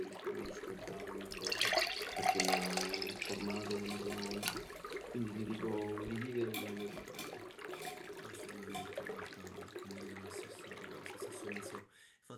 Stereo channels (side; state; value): both; identical; correlation 1.00